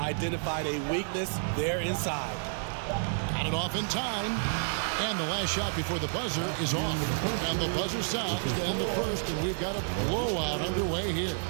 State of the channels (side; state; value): left; silent; digital silence